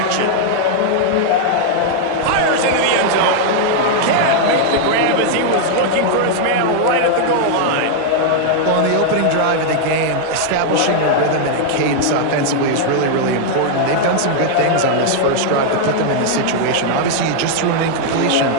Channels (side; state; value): both; different; correlation 0.00